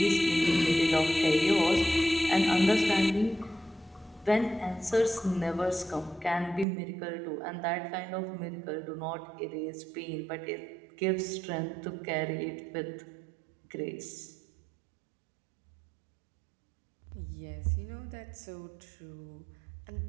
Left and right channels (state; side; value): drops out; left; at 6.7 s